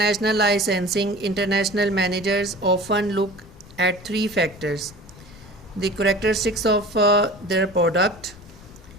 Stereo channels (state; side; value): noise; left; rumble, 20 dB below the sound